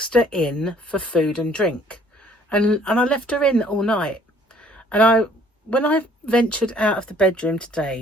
her in for food and drink, and I left her in all night. And when I ventured out of the bedroom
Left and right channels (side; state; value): both; normal; correlation 0.59